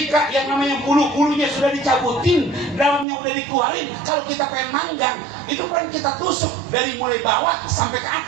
yang namanya bulu-bulunya sudah dicabutin, dalamnya udah dikeluarin, kalau kita pengen manggang, itu kan kita tusuk dari mulai bawah sampai ke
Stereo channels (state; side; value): drops out; left; at 3.1 s